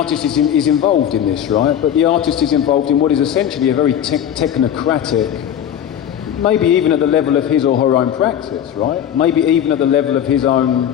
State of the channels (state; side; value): quieter; right; 9.7 dB